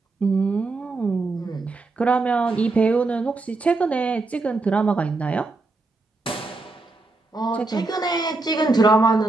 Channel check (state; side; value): quieter; left; 3.4 dB